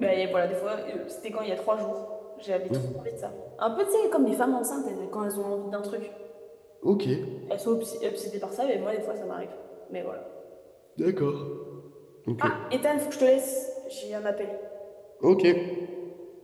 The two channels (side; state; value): both; identical; correlation 1.00